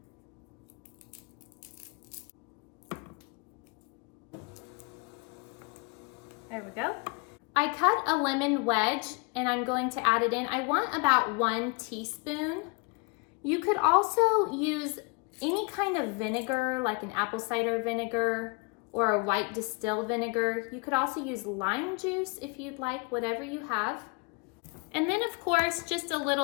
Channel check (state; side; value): quieter; right; 30.2 dB